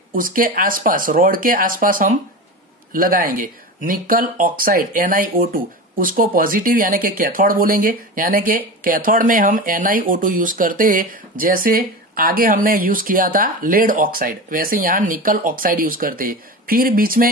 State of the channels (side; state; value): both; normal; correlation 0.27